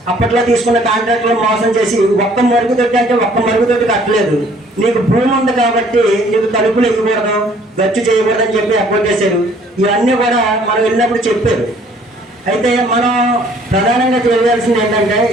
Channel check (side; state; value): both; normal; correlation 0.58